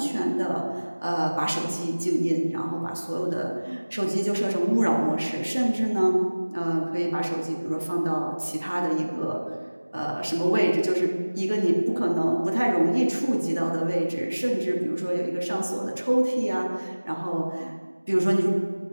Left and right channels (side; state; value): both; inverted; correlation -1.00